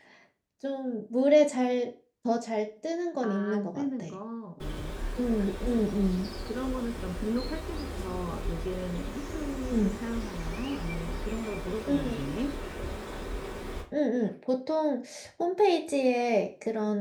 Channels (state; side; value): identical; both; correlation 1.00